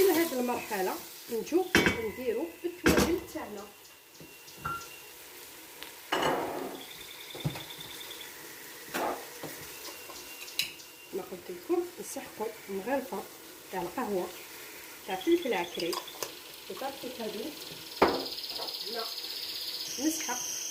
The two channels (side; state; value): both; identical; correlation 1.00